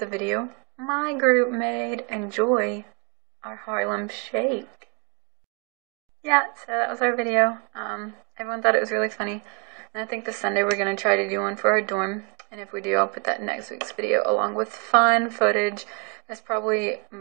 video my group made. Enjoy our Harlem Shake. Yeah, so that was our video. Everyone thought it was really funny. And I think this Sunday we're going to try to do one for our dorm. And if we do, I'll put that in next week's video along with fun footage. That's probably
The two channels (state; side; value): quieter; left; 29.6 dB